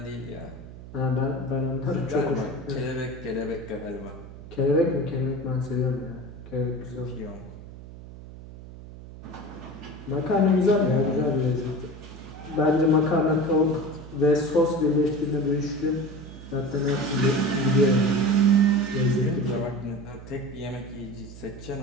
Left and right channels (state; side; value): noise; right; hum, 15 dB below the sound